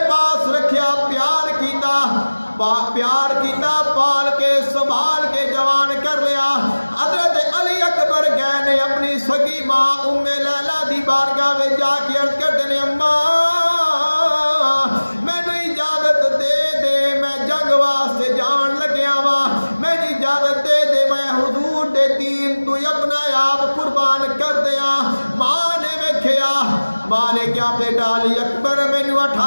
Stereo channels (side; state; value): both; inverted; correlation -1.00